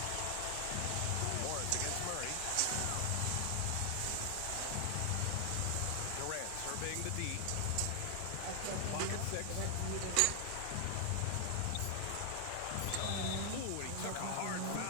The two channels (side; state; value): both; different; correlation 0.00